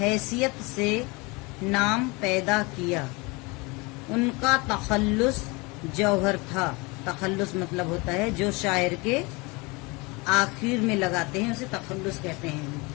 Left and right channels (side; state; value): right; quieter; 26.4 dB